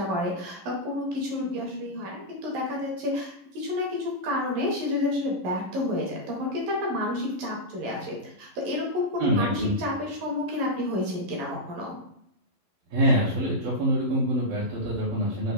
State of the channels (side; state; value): left; late; 11 ms